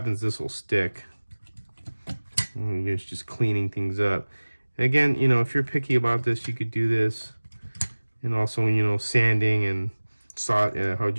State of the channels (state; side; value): inverted; both; correlation -1.00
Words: this will stick. And it's just cleaning things up. And again, you know, if you're picky about this, you could do this. And also, you know, sanding and how'd